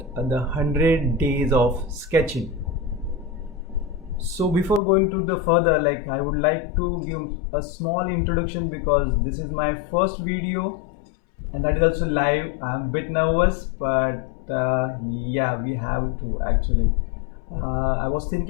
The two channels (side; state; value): right; drops out; at 4.8 s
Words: the 100 days of sketching. So before going to the further, I would like to give a small introduction because this is my first video and that is also live. I'm a bit nervous, but yeah, we have to actually. I was